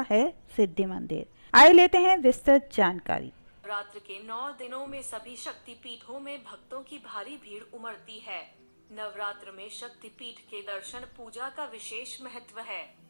है सिद्धि मंदिर। आइए लेते हैं विस्तृत जानकारी। नवरात्र के 9 दिनों में सभी शक्तिपीठों में भक्तों की भारी भीड़ उमड़ती है। नवरात्र में शक्तिपीठ के दर्शन पूजा का विशेष महत्व है।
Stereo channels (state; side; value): inverted; both; correlation -1.00